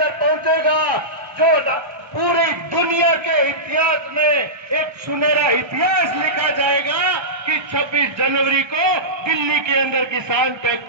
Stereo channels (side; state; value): left; late; 1.3 ms